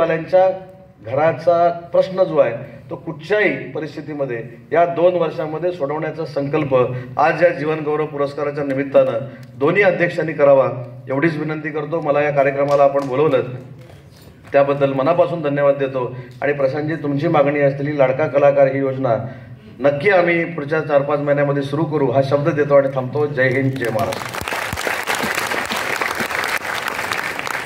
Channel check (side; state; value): both; identical; correlation 1.00